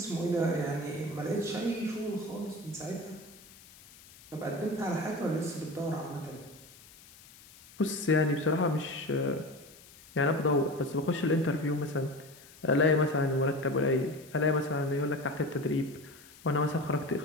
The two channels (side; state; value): left; noise; hiss, 22 dB below the sound